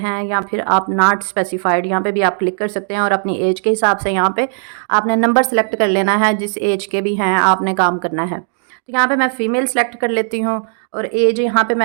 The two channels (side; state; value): left; silent; digital silence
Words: या फिर आप नॉट स्पेसिफाइड। यहाँ पे भी आप क्लिक कर सकते हैं और अपनी एज के हिसाब से यहाँ पे आपने नंबर सेलेक्ट कर लेना है। जिस एज के भी हैं आपने काम करना है। तो यहाँ पे मैं फ़ीमेल सेलेक्ट कर लेती हूँ और एज यहाँ पे